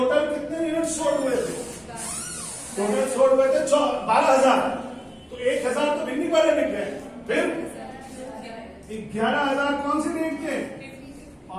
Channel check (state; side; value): identical; both; correlation 1.00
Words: कितने यूनिट सोल्ड हुए थे, टोटल सोल्ड हुए थे 12,000। तो 1,000 तो बिकने वाले बिक गए, फिर 11,000 कौन सी रेट के,